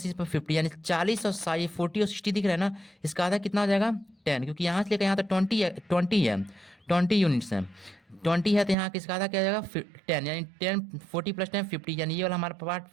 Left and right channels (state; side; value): drops out; left; at 8.8 s